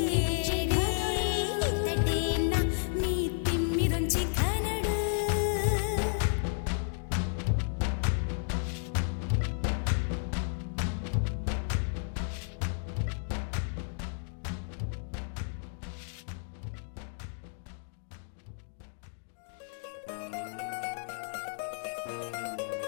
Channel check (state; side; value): silent; right; digital silence